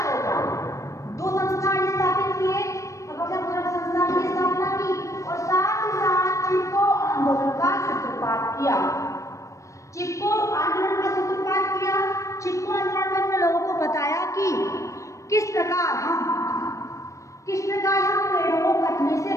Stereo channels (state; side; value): late; right; 0.15 ms